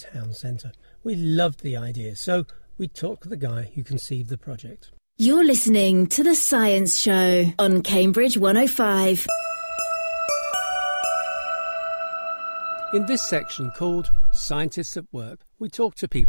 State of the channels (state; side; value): inverted; both; correlation -1.00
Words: centre. We loved the idea, so we talked to the guy who conceived the project. You're listening to The Science Show on Cambridge 105. In this section called Scientists at Work, we talk to